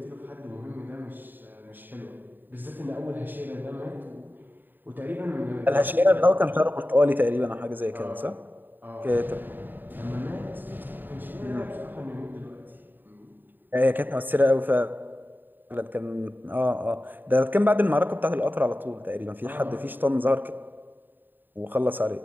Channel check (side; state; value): left; late; 0.091 ms